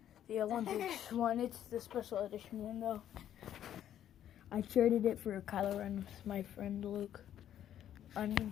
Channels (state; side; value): quieter; right; 10.8 dB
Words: The Olympics one. It's the special edition one though. I traded it for a Kylo Ren with my friend Luke. I mean